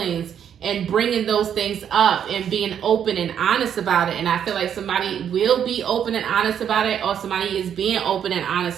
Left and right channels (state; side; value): quieter; left; 8.8 dB